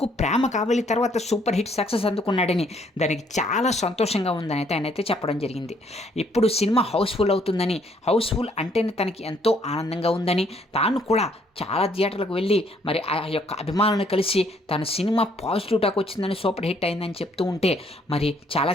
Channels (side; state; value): both; normal; correlation 0.66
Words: 'ప్రేమ కావలి' తర్వాత సూపర్ హిట్ సక్సెస్ అందుకున్నాడని, దానికి చాలా సంతోషంగా ఉందని అయితే ఆయనైతే చెప్పడం జరిగింది. ఇప్పుడు సినిమా హౌస్ఫుల్ అవుతుందని, హౌస్ఫుల్ అంటేనే తనకి ఎంతో ఆనందంగా ఉందని, తాను కూడా చాలా థియేటర్లకు వెళ్ళి మరి ఆ యొక్క అభిమానులను కలిసి తన సినిమా పాజిటివ్ టాక్ వచ్చిందని, సూపర్ హిట్ అయిందని చెప్తూ ఉంటే మరి చాలా